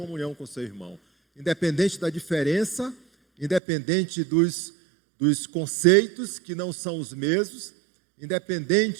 com seu irmão. Independente da diferença, independente dos conceitos que não são os mesmos,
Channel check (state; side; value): drops out; left; at 3.6 s